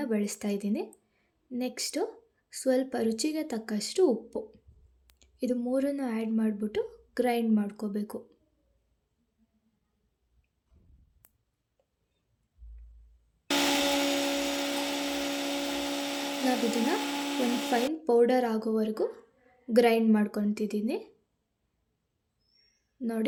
ಬಳಸ್ತಾಯಿದ್ದೀನಿ. ನೆಕ್ಸ್ಟು ಸ್ವಲ್ಪ ರುಚಿಗೆ ತಕ್ಕಷ್ಟು ಉಪ್ಪು. ಇದು ಮೂರನ್ನು ಆ್ಯಡ್ ಮಾಡಿಬಿಟ್ಟು ಗ್ರೈಂಡ್ ಮಾಡ್ಕೋಬೇಕು. ನಾವಿದನ್ನು ಒಂದು ಫೈನ್ ಪೌಡರ್ ಆಗೋವರೆಗೂ ಗ್ರೈಂಡ್ ಮಾಡ್ಕೊತಿದ್ದೀನಿ.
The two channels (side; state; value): both; identical; correlation 1.00